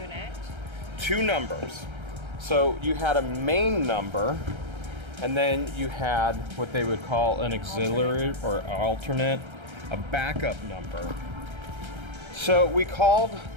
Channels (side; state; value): left; late; 1.3 ms